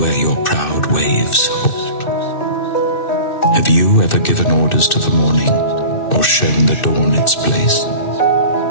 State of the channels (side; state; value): right; late; 2.6 ms